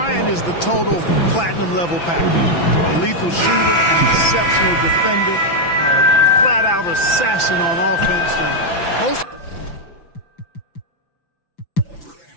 is the total platinum level package. A lethal shooter, an exceptional defender, a flat-out assassin on offense.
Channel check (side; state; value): right; late; 5.9 ms